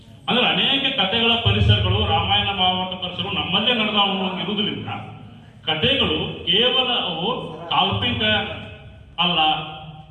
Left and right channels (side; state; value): both; identical; correlation 1.00